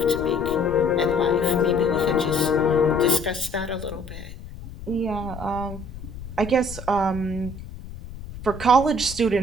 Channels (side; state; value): left; noise; rumble, 13 dB below the sound